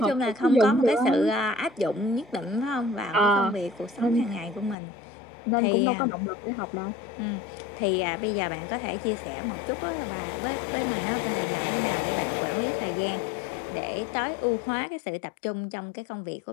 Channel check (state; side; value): drops out; right; at 4.8 s